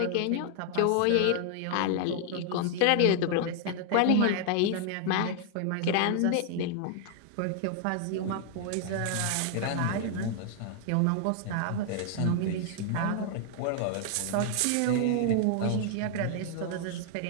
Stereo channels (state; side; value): different; both; correlation 0.00